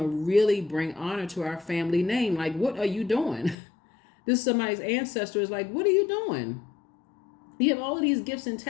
really bring honor to our family name. Like, what are you doing? This is somebody's ancestor is like, what are you doing? You have all of these gifts and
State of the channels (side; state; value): right; drops out; at 3.6 s